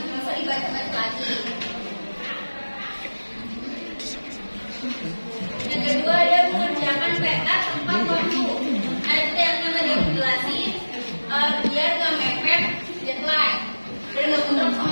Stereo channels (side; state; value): both; inverted; correlation -1.00